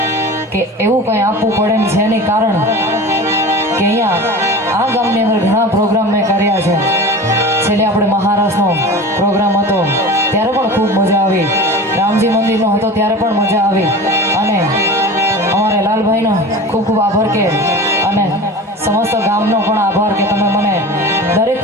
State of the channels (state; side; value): normal; both; correlation 0.34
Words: કે એવું કંઈ આપવું પડે ને છે એની કારણ કે અહીંયા આ ગામની અંદર ઘણા પ્રોગ્રામ મેં કર્યા છે। છેલ્લે આપણે મહારાષ્ટ્રનો પ્રોગ્રામ હતો ત્યારે પણ ખૂબ મજા આવી, રામજી મંદિરનો હતો ત્યારે પણ મજા આવી, અને અમારે લાલભાઈનો ખૂબ ખૂબ આભાર કે અને સમસ્ત ગામનો પણ આભાર કે તમે મને દરેક